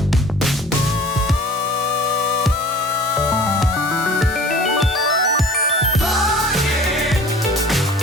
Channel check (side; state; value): both; normal; correlation 0.45